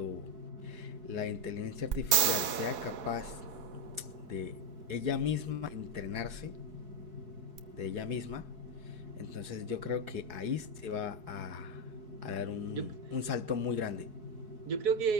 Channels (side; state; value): left; late; 4.7 ms